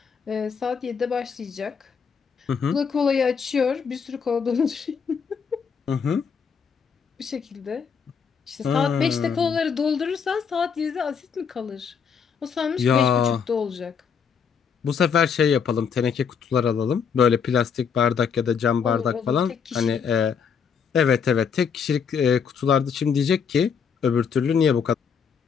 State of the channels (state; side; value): quieter; right; 6.6 dB